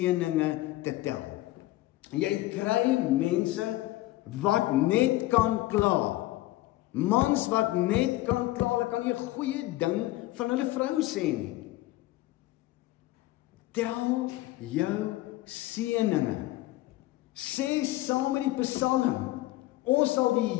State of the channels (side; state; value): right; quieter; 17.3 dB